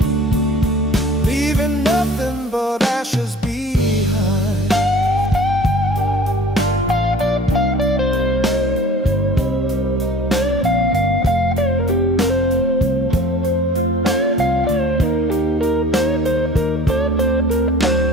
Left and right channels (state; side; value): normal; both; correlation 0.46